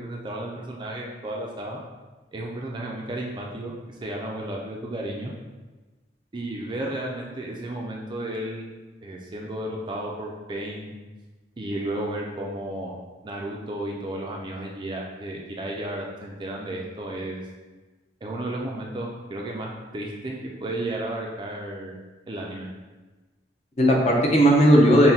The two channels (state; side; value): normal; both; correlation 0.66